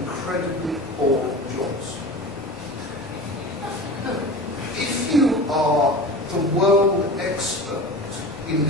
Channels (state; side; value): normal; both; correlation 0.33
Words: boring jobs. If you are the world expert in